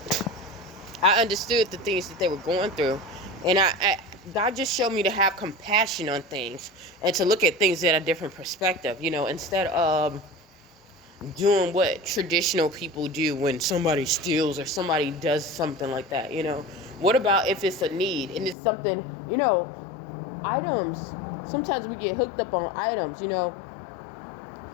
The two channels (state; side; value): drops out; right; at 18.6 s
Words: I understood the things that they were going through, and God just showed me to have compassion on things and to look at things at a different perspective. Instead of doing what traditional people do when somebody steals or somebody does something like that. What about if it's a need and it's something? Items. Sometimes we get hooked up on items. And